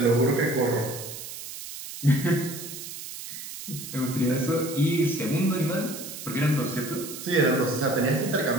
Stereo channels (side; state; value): right; noise; hiss, 10 dB below the sound